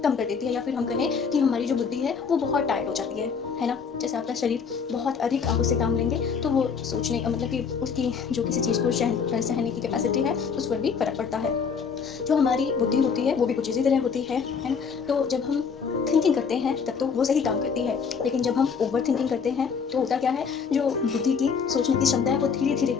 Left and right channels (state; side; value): quieter; right; 6.0 dB